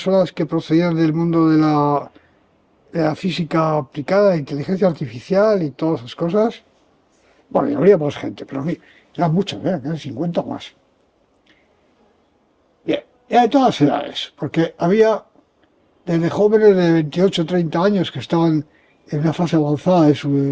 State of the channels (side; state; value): both; identical; correlation 1.00